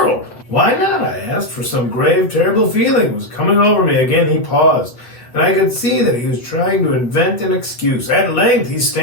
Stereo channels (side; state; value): right; late; 8.1 ms